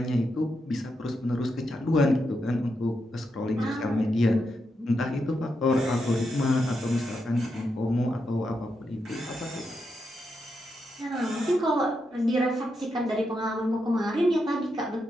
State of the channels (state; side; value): normal; both; correlation 0.84